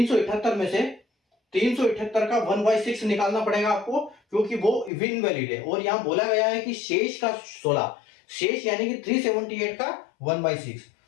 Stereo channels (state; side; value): drops out; right; at 4.9 s